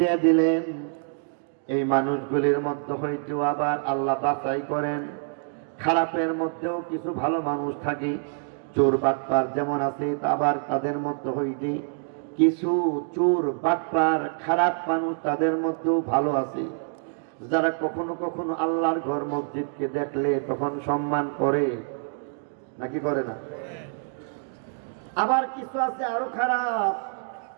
দিলেন। এই মানুষগুলির মধ্যে হইতেও আবার আল্লাহ বাছাই করেন, খারাপের মধ্যেও কিছু ভালো মানুষ থাকে। চোর বাটপার যেমন আছে, আবার তাদের মধ্যে হইতে কিছু চোর বাটপার খারাপ মানুষ তাদের মধ্যেও ভালো আছে, যারা কখনো কখনো আল্লাহর ঘর মসজিদকে দেখলে তখন সম্মান করে, নাকি করে না? আবার কিছু আছে আরো খারাপ,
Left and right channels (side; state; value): left; silent; 61 dB below the other